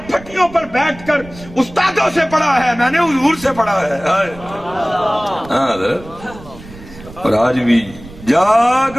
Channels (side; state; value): right; noise; rumble, 18 dB below the sound